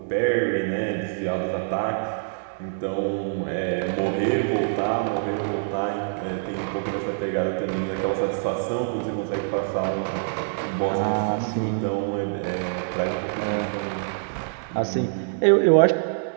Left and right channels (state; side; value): silent; left; digital silence